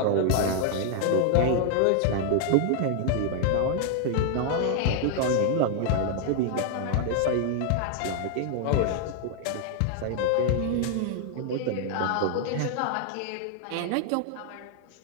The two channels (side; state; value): both; different; correlation 0.00